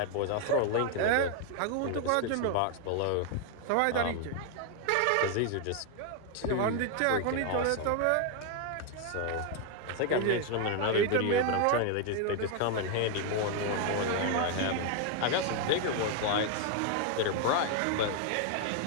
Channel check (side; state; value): both; different; correlation 0.01